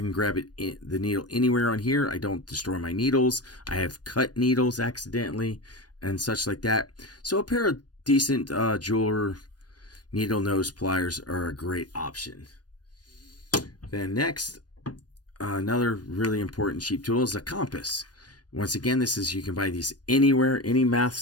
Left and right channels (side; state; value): right; late; 0.69 ms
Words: grab the needle anywhere on here. I don't destroy my needles. I have cut needles accidentally and such like that. So a pair of decent jeweler needle nose pliers are a great option. Then next, another really important cheap tool is a compass. Once again, you can buy these anywhere, any math